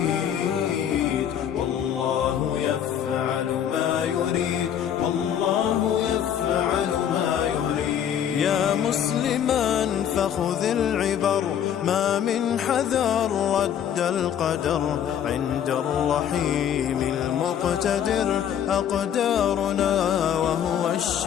والله يفعل ما يريد، والله يفعل ما يريد. يا مسلما فخذ العبر، ما من حذر رد القدر، عند الرحيم المقتدر أقدارنا وهو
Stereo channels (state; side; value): quieter; right; 9.3 dB